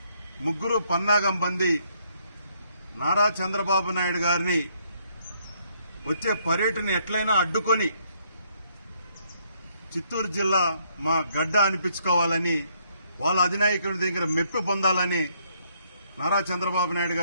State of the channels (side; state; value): both; inverted; correlation -0.70